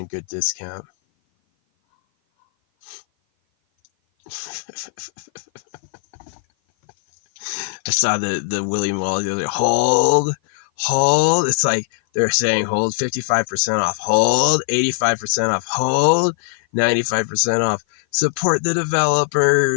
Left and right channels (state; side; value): silent; right; 57 dB below the other